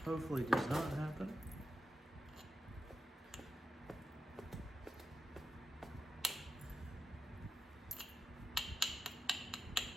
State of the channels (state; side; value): normal; both; correlation 0.90